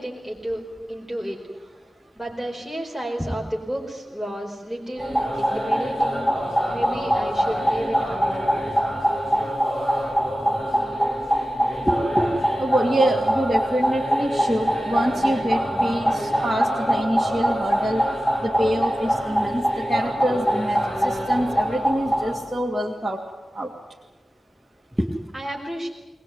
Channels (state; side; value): normal; both; correlation 0.94